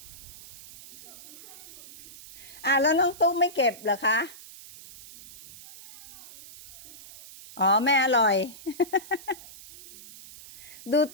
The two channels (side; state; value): right; noise; hiss, 18 dB below the sound